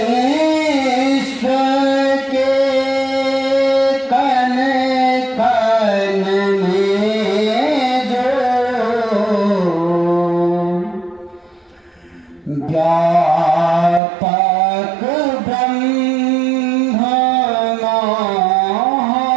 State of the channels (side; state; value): left; drops out; at 14.0 s